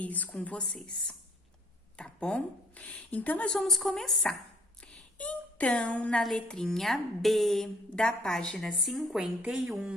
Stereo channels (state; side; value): normal; both; correlation 0.60